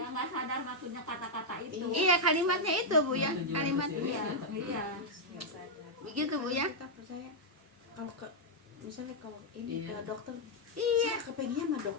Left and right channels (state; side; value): normal; both; correlation -0.04